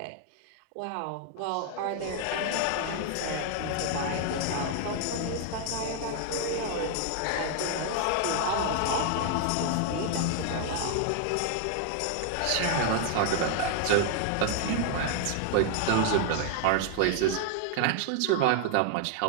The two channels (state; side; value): different; both; correlation 0.00